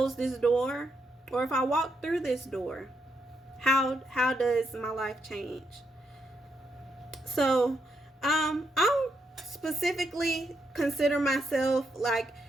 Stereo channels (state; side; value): normal; both; correlation 0.79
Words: this door, or if I walk through this door, how does my life change? So I don't specifically consider myself like